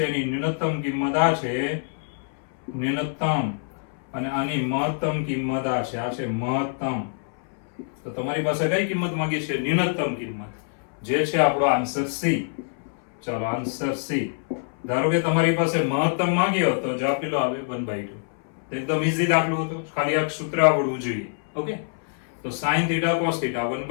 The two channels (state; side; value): silent; right; 62 dB below the other